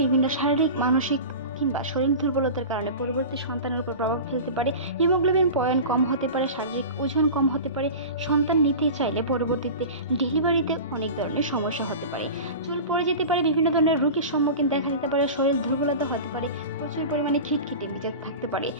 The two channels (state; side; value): inverted; both; correlation -0.32